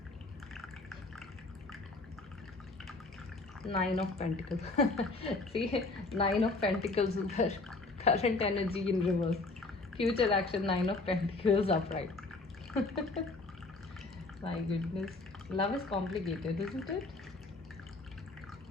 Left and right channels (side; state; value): right; quieter; 3.3 dB